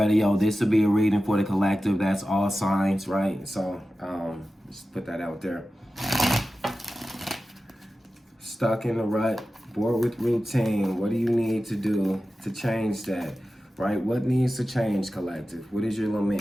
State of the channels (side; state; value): both; normal; correlation 0.94